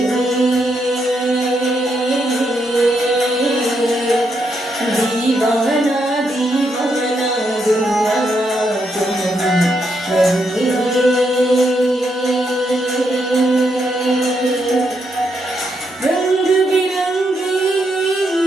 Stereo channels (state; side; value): normal; both; correlation 0.79